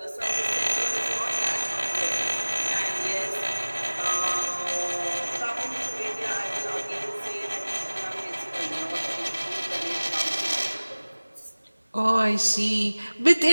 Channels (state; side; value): inverted; both; correlation -1.00